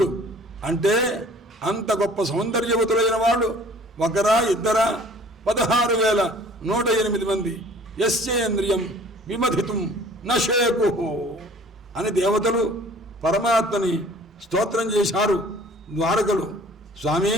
అంటే అంత గొప్ప సౌందర్యవతులైన వాళ్ళు ఒకరా ఇద్దరా? 16,108 మంది. యస్యేంద్రియం విమధితుం నశేకు అని దేవతలు పరమాత్మని స్తోత్రం చేశారు ద్వారకలు. స్వామి,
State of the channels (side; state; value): both; normal; correlation 0.51